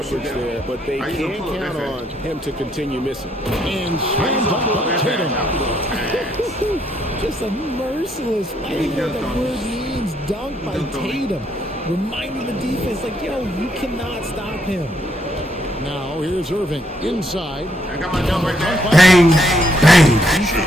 there, but they can count on him to continue missing. And slammed up by Tatum. Just a merciless, I don't know what the word means, dunk by Tatum. Reminding the defense, like, yo, you cannot stop him. Now here's Irving inside. I got my jump right there. Bang, bang.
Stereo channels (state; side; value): normal; both; correlation 0.72